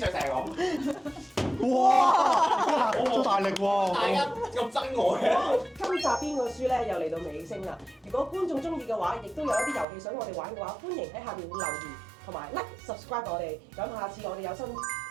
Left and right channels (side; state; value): left; drops out; at 9.9 s